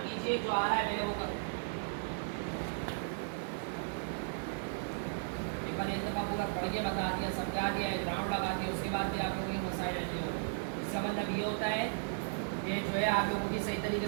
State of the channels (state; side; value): silent; left; 54 dB below the other